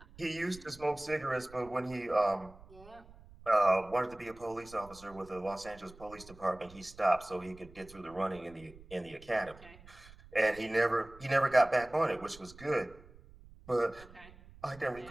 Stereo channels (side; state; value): right; noise; rumble, 21 dB below the sound